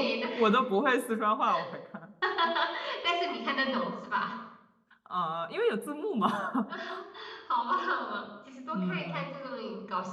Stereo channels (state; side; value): identical; both; correlation 1.00